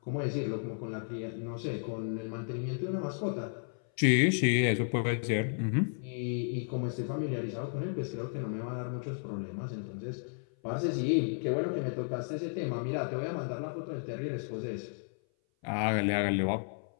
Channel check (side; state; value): right; silent; 56 dB below the other